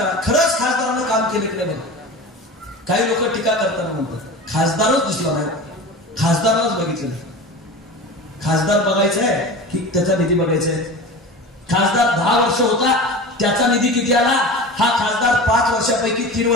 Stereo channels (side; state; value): both; normal; correlation 0.32